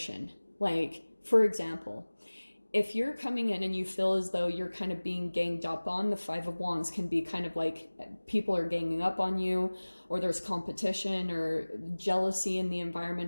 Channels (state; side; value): inverted; both; correlation -1.00